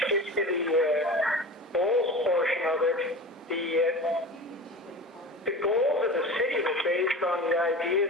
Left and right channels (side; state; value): both; normal; correlation 0.33